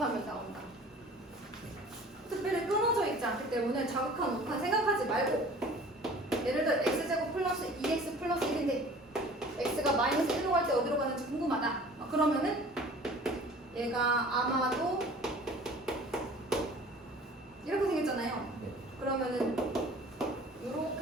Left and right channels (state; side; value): normal; both; correlation 0.46